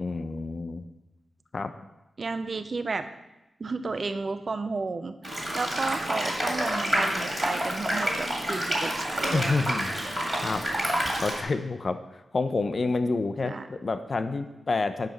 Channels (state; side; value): normal; both; correlation 0.91